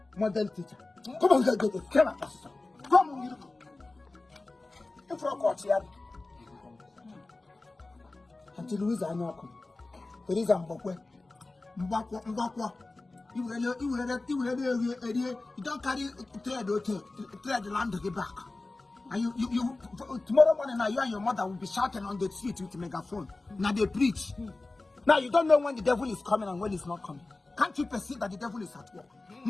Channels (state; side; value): quieter; right; 3.2 dB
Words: Model teacher. Come on, get it. Come on. Come on, you. If you're caught here. Until Louise I know. There is a Mbakwa. You don't carry trade the land to get back. And you tomorrow morning now you and your mother will be shouting on the street with a megaphone. Now they preach. Now you don't know when the devil is coming and when he's not coming. Can't you perceive that the devil is at work?